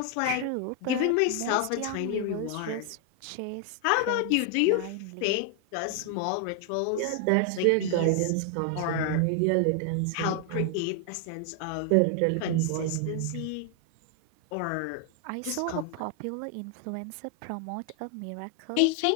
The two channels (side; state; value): both; different; correlation 0.00